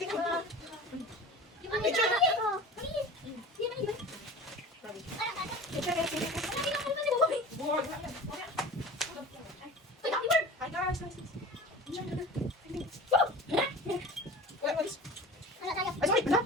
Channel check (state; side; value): normal; both; correlation 0.37